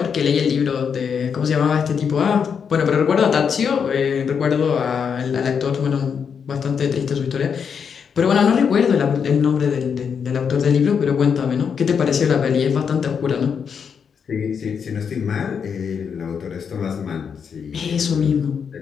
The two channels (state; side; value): quieter; right; 6.8 dB